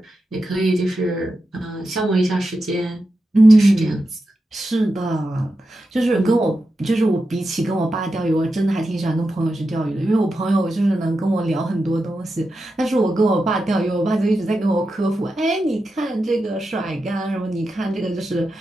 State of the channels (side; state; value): both; normal; correlation 0.89